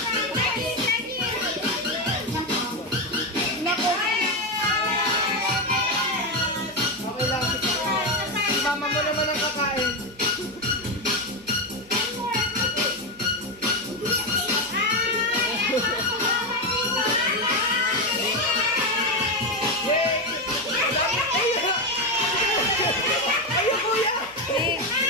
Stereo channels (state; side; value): noise; left; hum, 28 dB below the sound